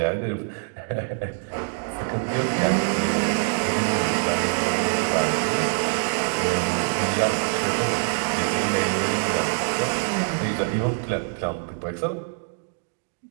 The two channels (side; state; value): left; silent; digital silence